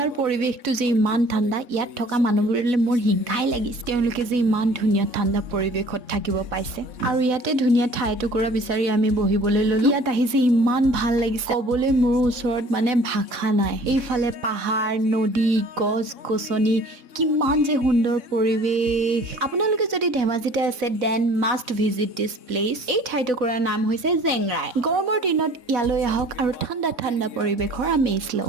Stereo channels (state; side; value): late; left; 3.6 ms